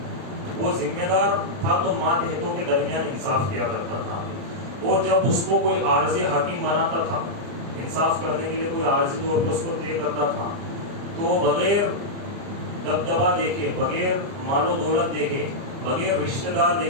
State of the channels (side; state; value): left; late; 30 ms